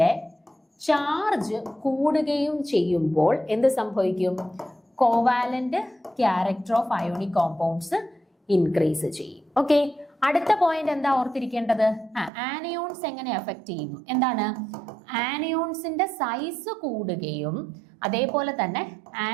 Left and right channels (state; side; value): drops out; left; at 12.3 s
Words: ചാർജ് കൂടുകയും ചെയ്യുമ്പോൾ എന്ത് സംഭവിക്കും? Covalent character of ionic compounds increase ചെയ്യും. ഓക്കെ, അടുത്ത പോയിന്റ് എന്താ ഓർത്തിരിക്കേണ്ടത്? ആനയോൺസ് എങ്ങനെ അഫക്ട് ചെയ്യുന്നു? എന്താണ്? ആനയോൺസിന്റെ സൈസ് കൂടുകയും അതേപോലെ തന്നെ